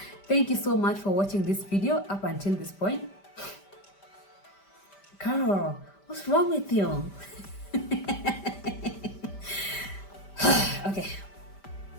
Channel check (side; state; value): right; late; 5.1 ms